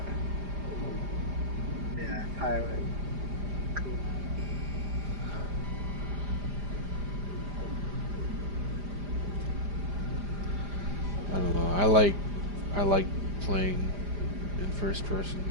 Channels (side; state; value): left; late; 5.0 ms